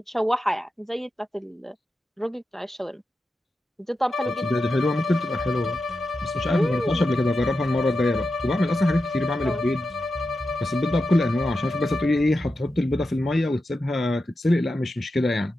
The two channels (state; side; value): normal; both; correlation 0.90